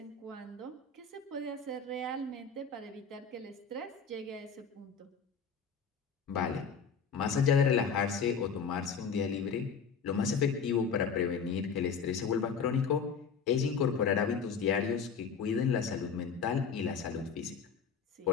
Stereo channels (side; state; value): right; quieter; 6.0 dB